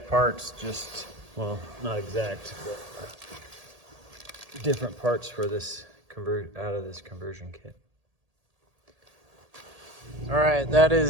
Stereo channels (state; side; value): late; left; 1.8 ms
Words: parts, well, not exact, but different parts for this out of this conversion kit. All right, that